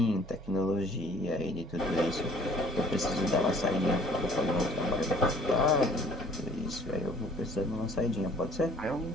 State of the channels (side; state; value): both; normal; correlation 0.55